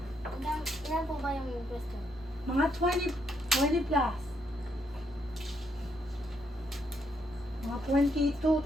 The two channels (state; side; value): normal; both; correlation 0.76